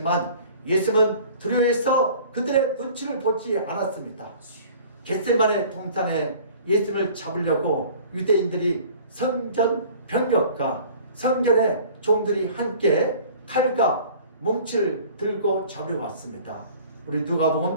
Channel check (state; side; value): inverted; both; correlation -0.48